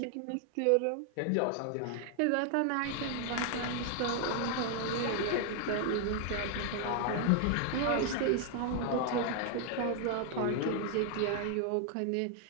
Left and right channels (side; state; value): both; different; correlation 0.00